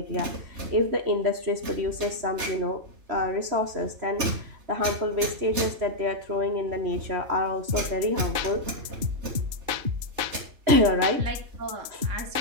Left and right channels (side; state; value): left; late; 3.3 ms